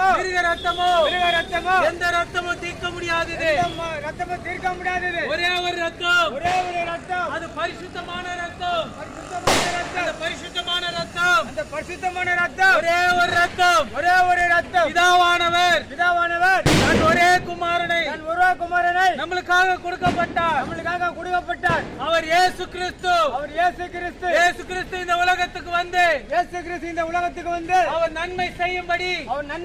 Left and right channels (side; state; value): both; identical; correlation 1.00